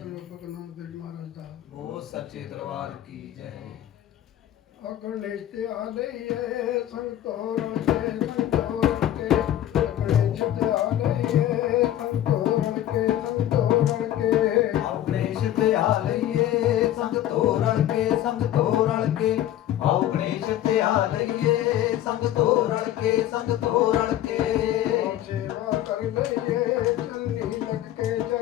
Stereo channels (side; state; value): right; quieter; 12.4 dB